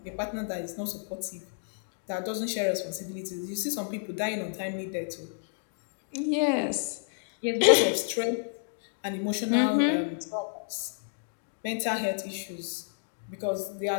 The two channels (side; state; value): right; silent; digital silence